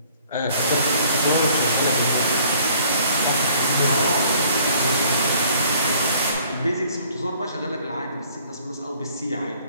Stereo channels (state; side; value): inverted; both; correlation -0.58